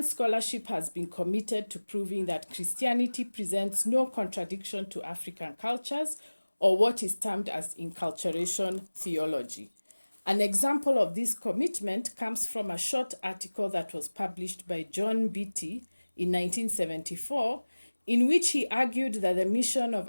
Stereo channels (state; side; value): inverted; both; correlation -1.00